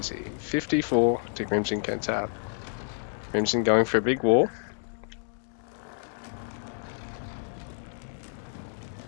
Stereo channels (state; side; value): silent; right; digital silence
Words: 54 to Crimson Kentab. Crimson going for a big wall.